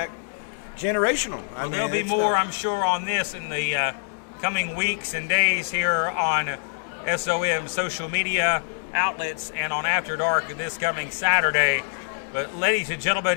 generational. Well, there'll be more, I'm sure, on this in the coming weeks and days here on SOM social media outlets and on After Dark this coming Saturday. But ladies and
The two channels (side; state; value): right; silent; 62 dB below the other